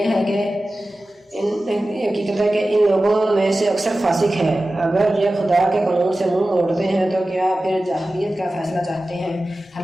ہے کہ ان لوگوں میں سے اکثر فاسق ہیں۔ اگر یہ خدا کے قانون سے منہ موڑتے ہیں تو کیا پھر جاہلیت کا فیصلہ چاہتے ہیں؟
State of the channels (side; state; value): both; normal; correlation 0.95